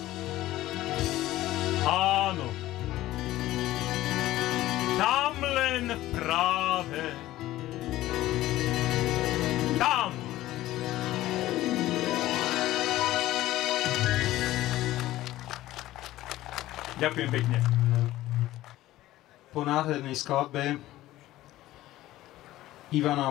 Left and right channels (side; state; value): right; quieter; 15.6 dB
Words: Áno, tam len práve tam. Ďakujem pekne. Po nádhernej skladbe